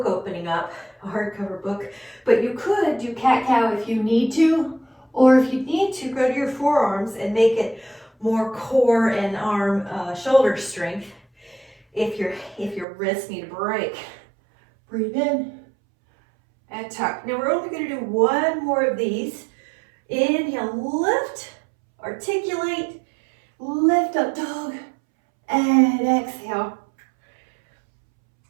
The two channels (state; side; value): drops out; left; at 12.9 s